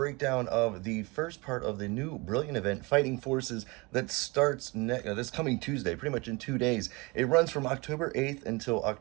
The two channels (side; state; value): left; quieter; 26.1 dB